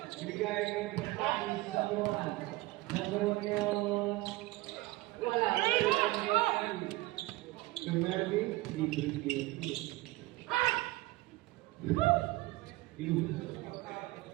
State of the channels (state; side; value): quieter; left; 19.6 dB